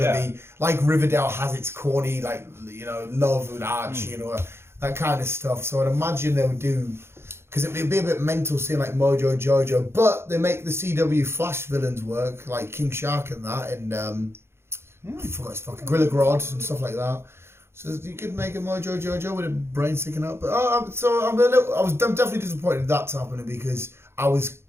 like Riverdale has its corny, like, love and Archie, that kind of stuff. So I'd imagine they would do, because it'd be a bit mental seeing like Mojo Jojo, but they make the CW Flash villains work, like King Shark and that, and I forgot his fucking Gorilla Grodd and stuff like that. So you could make a Mojo Jojo with a brain sticking out. But I'm definitely disappointed in that's happening because I was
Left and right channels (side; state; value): left; late; 0.12 ms